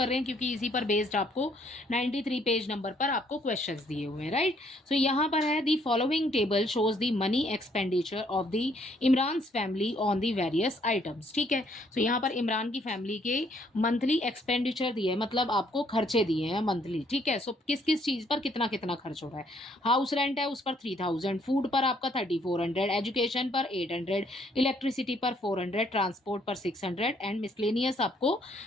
रहे हैं, क्योंकि इसी पर बेस्ड आपको 93 पेज नंबर पर आपको क्वेश्चंस दिए हुए हैं, राइट। सो यहाँ पर है the following table shows the money expenditure of the Imran's family on the various items. ठीक है, सो यहाँ पर इमरान की फैमिली के मंथली एक्सपेंडिचर दिए है, मतलब आपको खर्चे दिए हैं मंथली। ठीक है, सो किस किस चीज पर कितना कितना खर्च हो रहा है। हाउस रेंट है उस पर 3000, फूड पर आपका 3400, एजुकेशन पर 800, इलेक्ट्रिसिटी पर 400, ट्रांसपोर्ट पर 600 एंड मिसलेनियस आपको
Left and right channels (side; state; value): both; normal; correlation 0.67